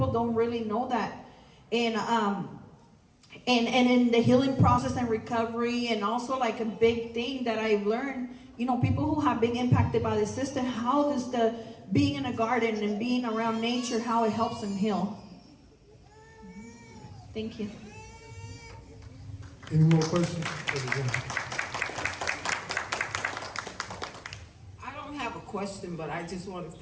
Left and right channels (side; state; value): both; identical; correlation 1.00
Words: don't really know that. And in the healing process and recovery, and also like a big thing that I've learned, people who have been impacted by the system, how does the being in a garden and being around nature, how it helps them heal. Thank you. Any more questions? I don't have a question, but I just want to